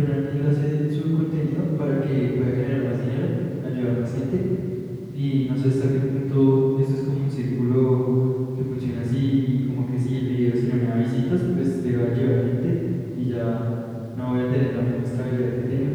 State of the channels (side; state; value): both; identical; correlation 1.00